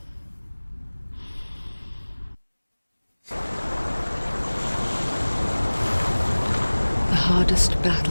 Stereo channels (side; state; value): both; inverted; correlation -1.00